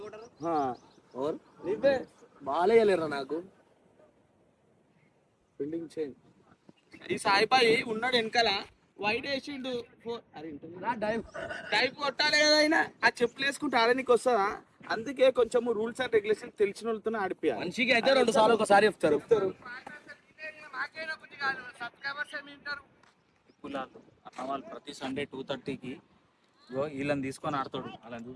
నువ్వే బాగాలేయలేరా నాకు. Building change. ఈ సాయిబాయి ఉన్నాడు వెనకాల, వైట్ వేసిండు. టైప్ కొట్టాలి కదా అయినా. ఆ చెప్పులు వేసుకుంటే ఆడడానికి వస్తుందా? అందుకే కొంచెం రూల్స్ అండ్ రెగ్యులేషన్ తెలిసిన వాళ్ళతో ఆడిపోయాలి. మనిషికి అయితే 2 సార్లు ఒకసారి చెప్తారు. అన్న వాళ్ళు ప్రతి సండే 2:30కి వీళ్ళని తీసుకొని ఆడతాడు. అలా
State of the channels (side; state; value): both; identical; correlation 1.00